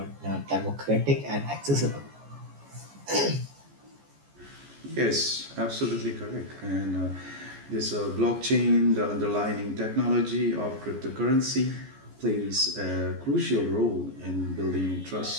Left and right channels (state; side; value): late; left; 14 ms